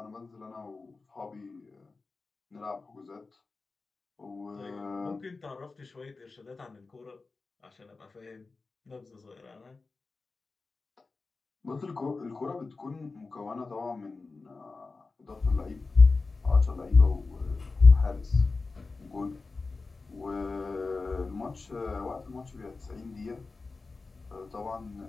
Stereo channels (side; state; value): right; quieter; 3.9 dB